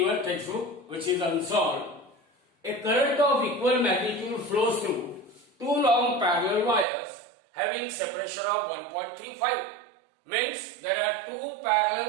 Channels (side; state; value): left; drops out; at 6.9 s